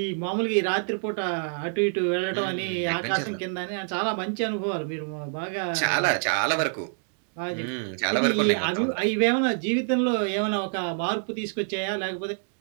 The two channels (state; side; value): silent; left; 60 dB below the other